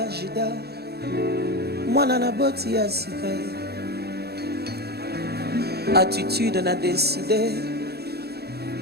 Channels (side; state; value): left; late; 0.47 ms